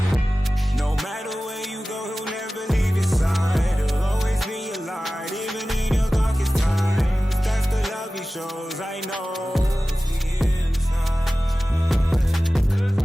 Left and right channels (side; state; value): both; normal; correlation 0.96